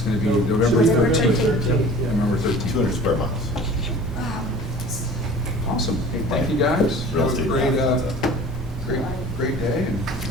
gonna be November November 13th. 13th. November 13th. 200 square miles. Awesome. Hey, thank you guys. Real Have a estate. great, great day, and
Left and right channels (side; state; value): both; normal; correlation 0.43